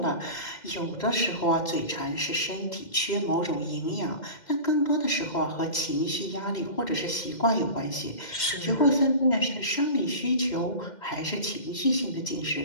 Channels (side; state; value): right; late; 2.1 ms